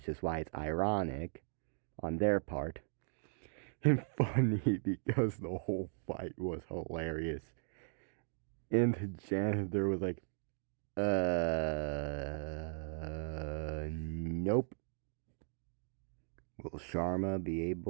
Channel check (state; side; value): silent; left; digital silence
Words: is why it's ironic on their part. And funny because the whole fight was hilarious. And the janitor was like, nope. Will Sharma be